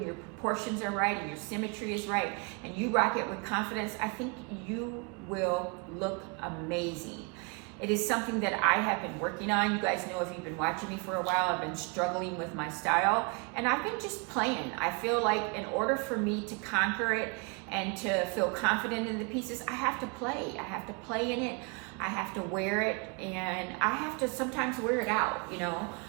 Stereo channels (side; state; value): left; quieter; 31.3 dB